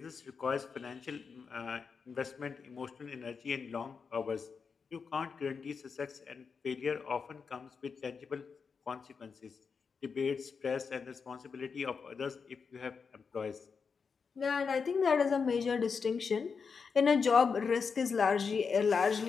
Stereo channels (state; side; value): quieter; right; 5.6 dB